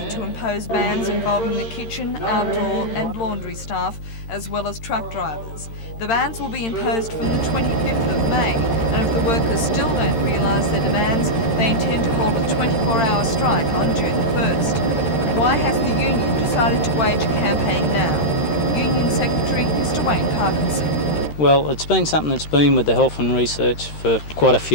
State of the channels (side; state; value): right; late; 13 ms